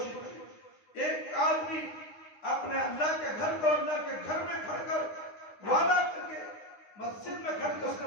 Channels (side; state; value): right; late; 9.7 ms